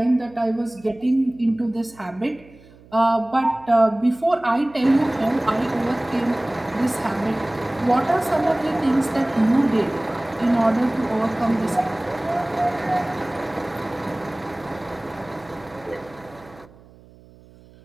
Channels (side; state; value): right; noise; hum, 25 dB below the sound